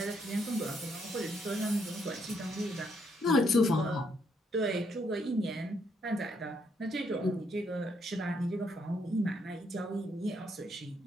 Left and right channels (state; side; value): normal; both; correlation 0.74